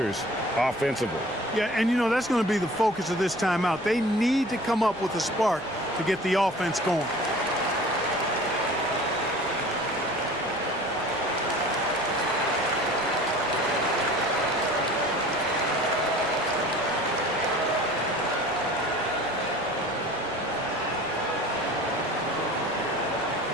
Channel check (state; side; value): noise; right; rumble, 24 dB below the sound